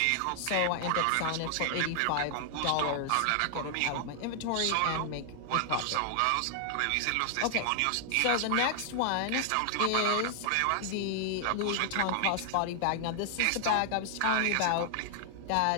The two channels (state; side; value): different; both; correlation 0.00